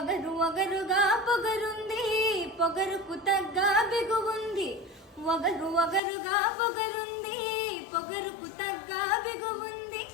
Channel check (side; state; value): right; drops out; at 6.0 s